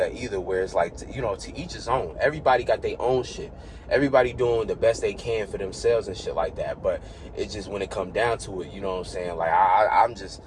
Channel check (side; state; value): both; identical; correlation 1.00